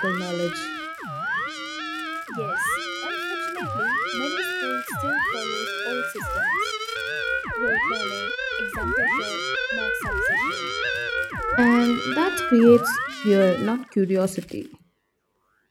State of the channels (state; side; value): identical; both; correlation 1.00